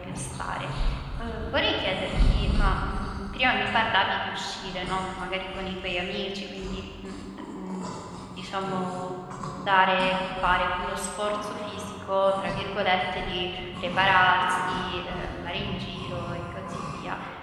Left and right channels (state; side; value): identical; both; correlation 1.00